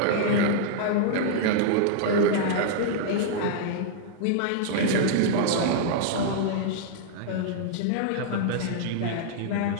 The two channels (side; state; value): both; different; correlation -0.01